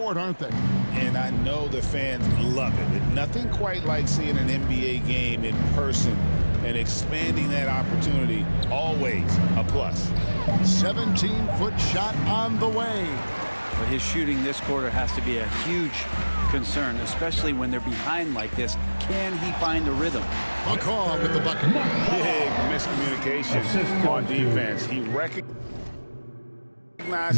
aren't they? And I know the fans love it. Nothing quite like seeing an NBA game in person and expanding that opportunity. Always a plus. 17-foot shot on the way. But his shooting this quarter has to be a huge concern, especially when they're behind like this. Can he find a rhythm? McCaw with the bucket. Big miscommunication on defense. He recognizes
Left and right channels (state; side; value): inverted; both; correlation -1.00